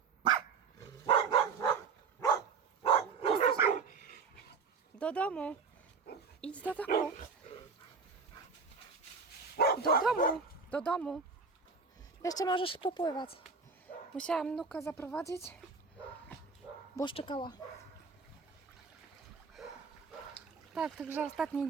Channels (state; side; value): quieter; left; 5.2 dB